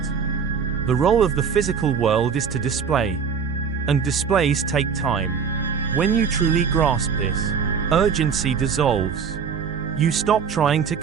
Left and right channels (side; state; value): left; quieter; 6.4 dB